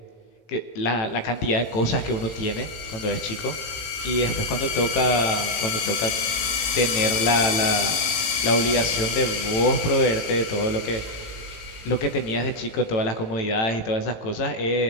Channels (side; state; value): right; late; 18 ms